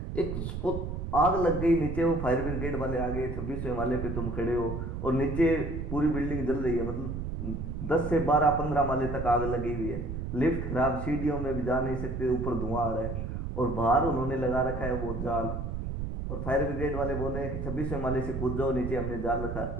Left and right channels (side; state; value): right; noise; rumble, 4 dB below the sound